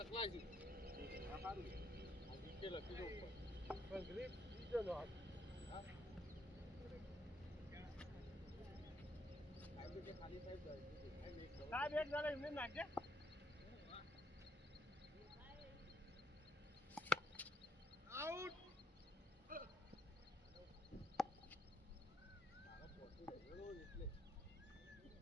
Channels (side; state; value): both; normal; correlation 0.73